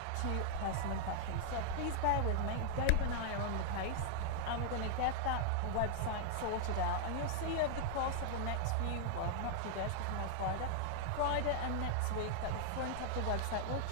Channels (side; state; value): both; different; correlation -0.01